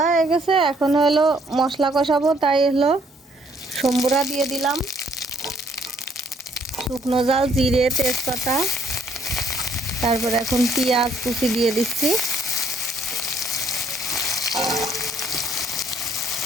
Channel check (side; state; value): both; normal; correlation 0.66